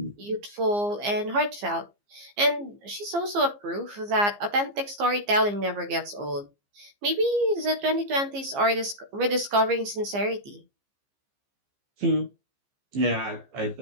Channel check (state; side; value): late; left; 15 ms